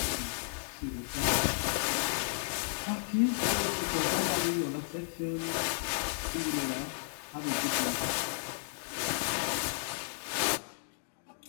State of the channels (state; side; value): silent; right; digital silence